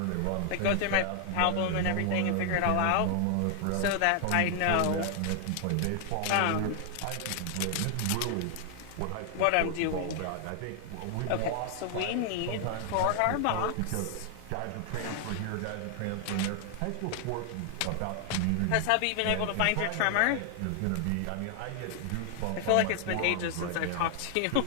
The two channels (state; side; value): different; both; correlation 0.00